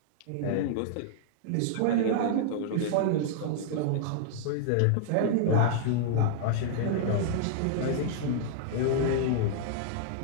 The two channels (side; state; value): both; different; correlation -0.01